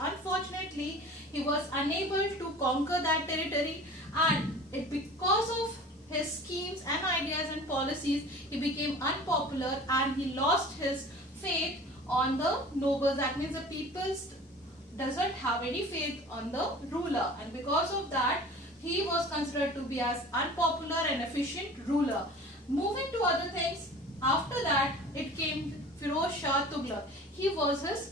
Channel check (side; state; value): both; normal; correlation 0.42